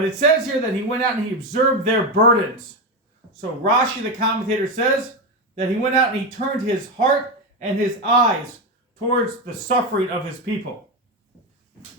it says here that he went out and he observed their burdens. So Rashi, the commentator, says that he went out and he turned his heart and his eyes towards the suffering of his people.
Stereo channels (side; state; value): both; normal; correlation 0.13